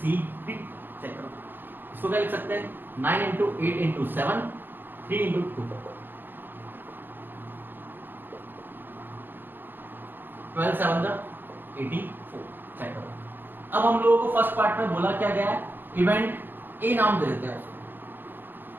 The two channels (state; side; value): late; left; 0.090 ms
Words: चेक करो, इसको क्या लिख सकते हैं, 9 इंटू 8 इंटू 7, 3 इंटू 2, 12 7 84, चेक करो। अब हम लोगों को फर्स्ट पार्ट में बोला क्या गया है, इवेंट ए नाम दे देते हैं